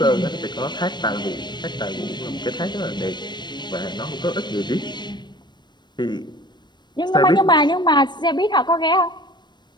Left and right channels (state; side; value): late; right; 0.22 ms